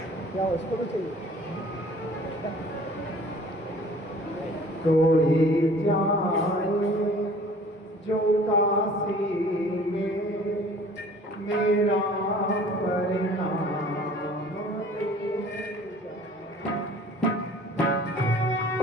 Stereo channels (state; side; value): normal; both; correlation 0.50